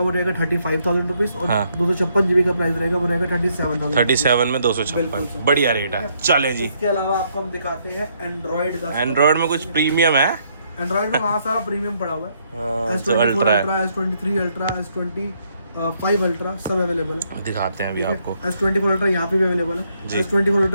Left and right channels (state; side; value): inverted; both; correlation -0.72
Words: वो रहेगा 35,000 रुपीज और हाँ। 256 GB का प्राइस रहेगा वो रहेगा 37,000। 37 में 256। बढ़िया रेट है। चले जी। इसके अलावा आपको हम दिखाते हैं एंड्रॉइड का। एंड्रॉइड में कुछ प्रीमियम है। एंड्रॉइड में वहाँ सारा प्रीमियम पड़ा हुआ है। जो अल्ट्रा है। S23 अल्ट्रा S25 अल्ट्रा सब अवेलेबल है। दिखाते हैं अभी आपको। S24 अल्ट्रा यहाँ पे भी अवेलेबल जी। है। S24